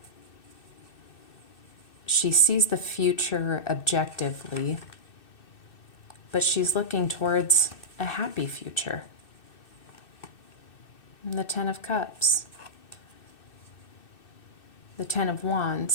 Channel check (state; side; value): late; right; 2.6 ms